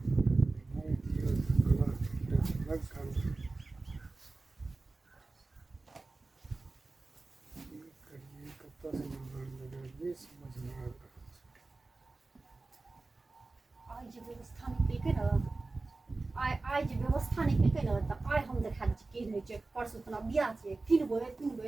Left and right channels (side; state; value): left; quieter; 3.5 dB